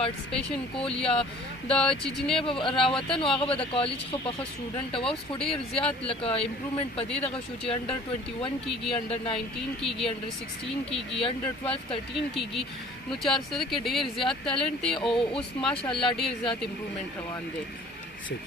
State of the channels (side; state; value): both; normal; correlation 0.50